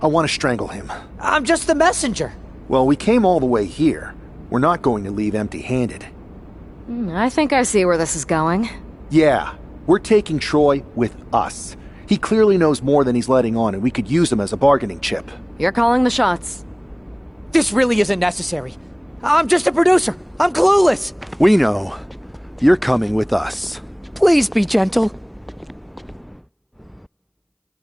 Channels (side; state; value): both; identical; correlation 1.00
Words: I want to strangle him. I'm just the messenger. Well, we came all the way here. We're not going to leave empty-handed. I think I see where this is going. Yeah, we're taking Troy with us. He clearly knows more than he's letting on, and we could use him as a bargaining chip. You're calling the shots. This really isn't necessary. I'm just a producer. I'm clueless. We know. You're coming with us. Please be gentle.